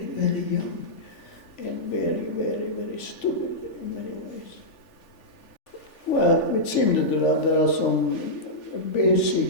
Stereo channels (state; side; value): late; right; 3.4 ms